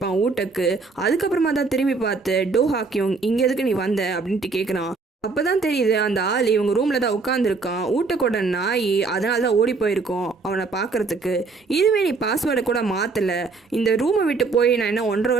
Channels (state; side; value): quieter; left; 4.2 dB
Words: ஊட்டக்கு. அதுக்கப்புறமா தான் திரும்பி பார்த்து, டோ ஹாக்கியோங் இங்கே எதுக்கு நீ வந்த அப்படின்ட்டு கேட்குறான். அப்போதான் தெரியுது அந்த ஆள் இவங்க ரூமில் தான் உட்காந்துருக்கான். ஊட்டக்கூட நாய், அதனால தான் ஓடி போயிருக்கோம் அவனை பார்க்கறதுக்கு. இதுவே நீ பாஸ்வேர்டை கூட மாற்றலை, இந்த ரூமை விட்டு போய் நான் என்ன 1.5